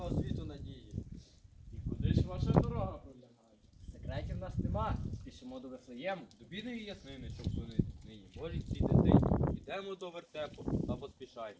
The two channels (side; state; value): both; identical; correlation 1.00